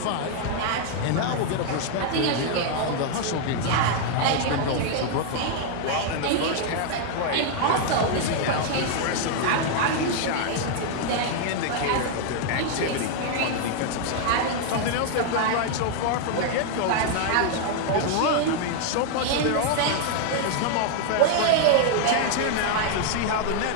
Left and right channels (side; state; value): both; different; correlation 0.00